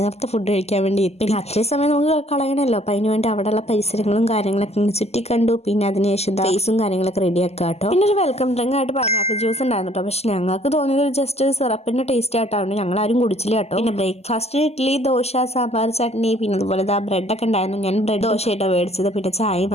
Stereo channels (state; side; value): late; right; 0.30 ms